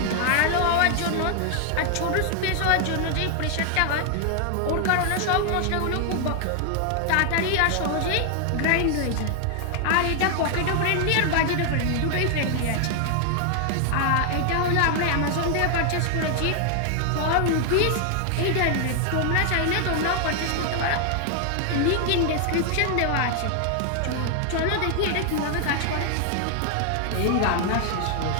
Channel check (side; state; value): both; different; correlation 0.00